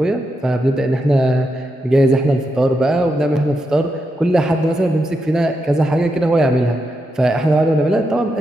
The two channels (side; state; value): both; normal; correlation 0.84